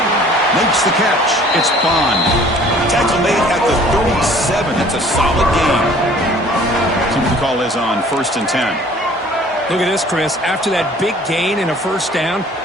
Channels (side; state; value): both; normal; correlation 0.52